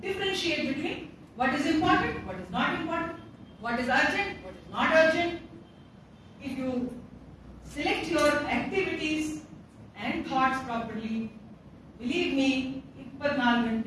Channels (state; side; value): identical; both; correlation 1.00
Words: differentiate between what is important, what is not important, what is urgent, what is not urgent? If you select your activities and thoughts properly, believe me, 24